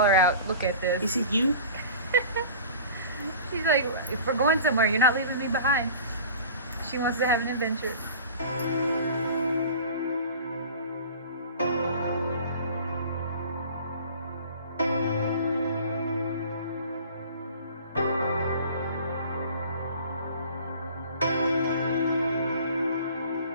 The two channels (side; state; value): both; inverted; correlation -0.42